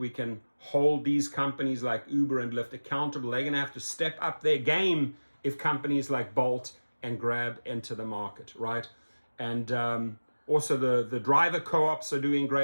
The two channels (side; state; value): both; inverted; correlation -1.00